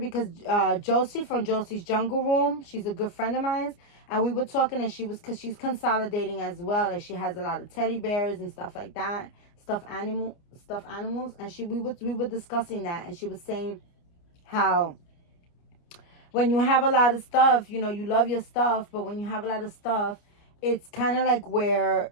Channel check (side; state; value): right; late; 29 ms